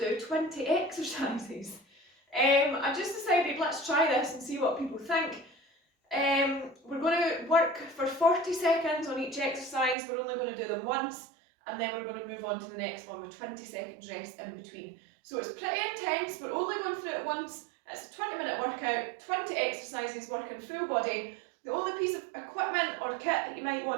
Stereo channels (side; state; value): left; drops out; at 10.0 s